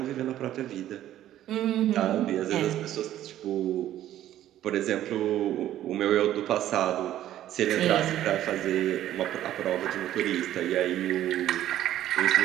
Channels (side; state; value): left; quieter; 12.6 dB